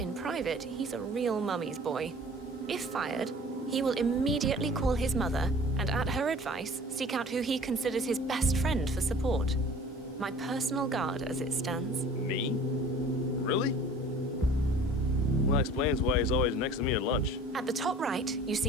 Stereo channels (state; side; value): normal; both; correlation 0.46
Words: private, he's a real mummy's boy. If fired, he will immediately call his mother and, at her advice, seek out who he considers his best friend for support. My personal guard as it stands. Me? Really? Well, that explains why he's always next to me at lunch. At the top right, you